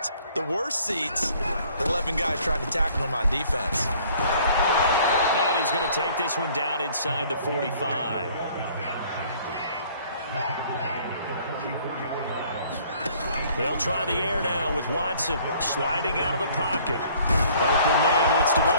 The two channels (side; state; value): both; inverted; correlation -0.57